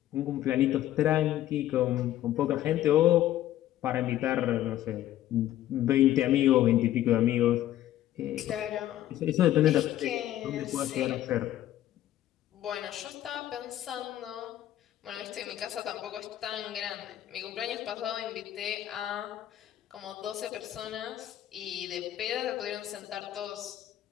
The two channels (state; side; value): quieter; right; 13.1 dB